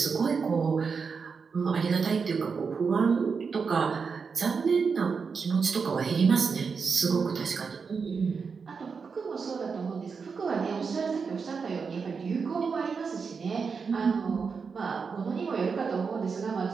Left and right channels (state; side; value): quieter; left; 5.4 dB